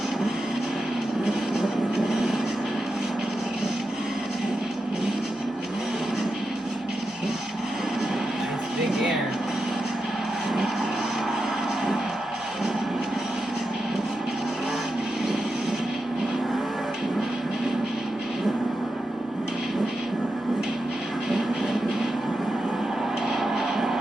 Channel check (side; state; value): both; normal; correlation 0.88